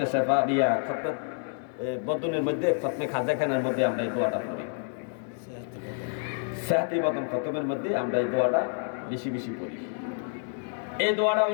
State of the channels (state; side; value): silent; right; 59 dB below the other